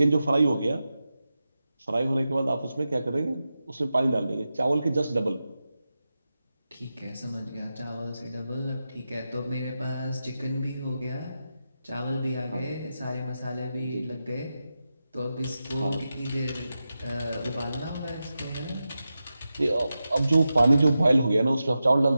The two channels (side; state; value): both; inverted; correlation -0.91